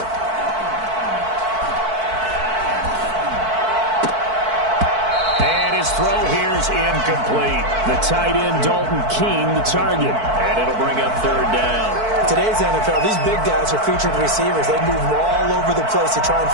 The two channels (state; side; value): late; left; 4.5 ms